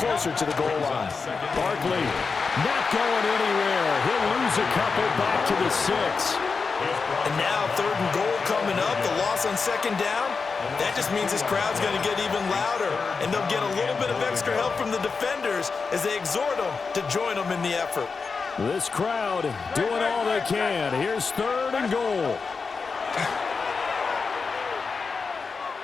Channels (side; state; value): right; quieter; 4.8 dB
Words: to the goal line. Barkley not going anywhere. He'll lose a couple back to the 6. And now 3rd and goal coming up. The loss on 2nd down. That just means this crowd's going to get even louder. And they'll get a little bit of extra help from the defenders as they exhort them to join them in the effort. This crowd doing all they can. Here's 3rd and goal.